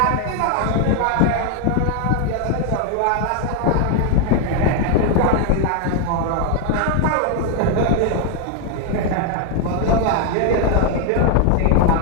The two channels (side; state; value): both; different; correlation 0.00